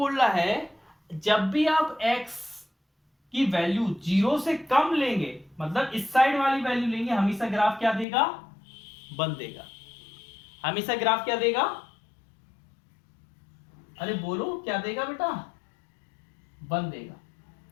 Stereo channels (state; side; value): drops out; right; at 8.1 s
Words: रहा है जब भी आप x की वैल्यू 0 से कम लेंगे, मतलब इस साइड वाली वैल्यू लेंगे, हमेशा ग्राफ क्या देगा? 1 देगा। हमेशा ग्राफ क्या देगा? अरे बोलो क्या देगा बेटा? 1 देगा।